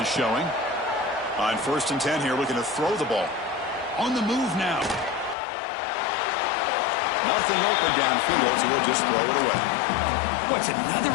is showing. On 1st and 10 here, looking to throw the ball. On the move now. Nothing open downfield, so we'll just throw it away. What's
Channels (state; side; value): drops out; right; at 5.4 s